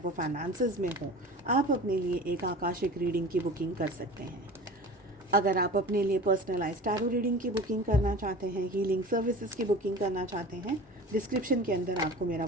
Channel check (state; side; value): normal; both; correlation 0.38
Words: फाइनेंसेस में हो, आप अपने लिए एक आकाशिक रीडिंग की बुकिंग कर सकते हैं। अगर आप अपने लिए पर्सनलाइज्ड टैरो रीडिंग की बुकिंग करना चाहते हैं, हीलिंग सर्विसेज की बुकिंग करना चाहते हैं, डिस्क्रिप्शन के अंदर आपको मेरा